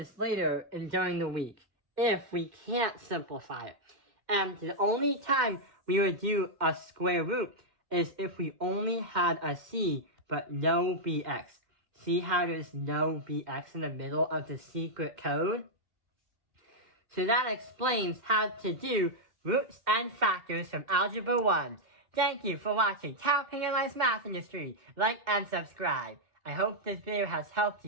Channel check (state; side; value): late; left; 2.1 ms